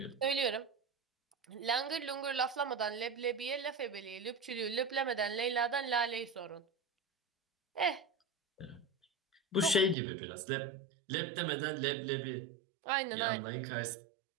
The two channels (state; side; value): drops out; left; at 10.0 s